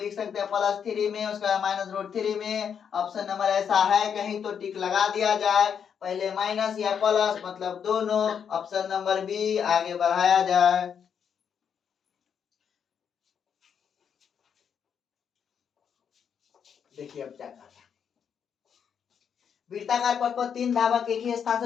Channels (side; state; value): right; quieter; 7.5 dB